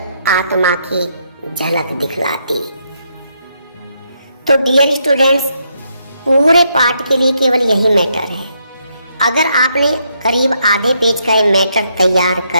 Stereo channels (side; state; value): both; inverted; correlation -0.77